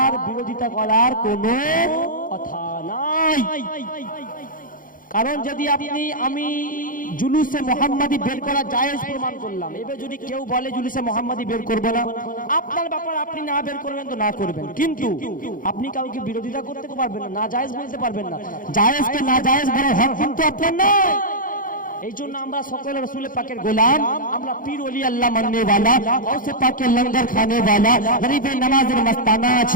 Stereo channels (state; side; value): late; right; 0.40 ms